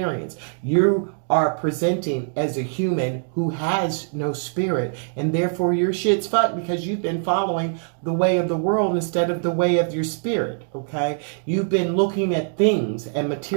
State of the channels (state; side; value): silent; left; 64 dB below the other